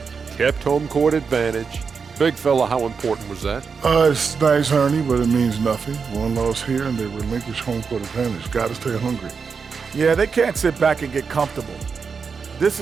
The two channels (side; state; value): left; quieter; 5.6 dB